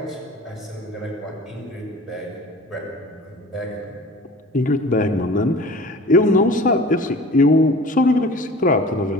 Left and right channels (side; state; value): both; normal; correlation 0.42